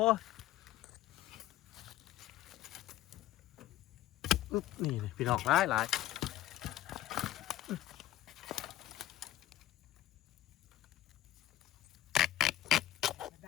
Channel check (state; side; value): quieter; right; 13.9 dB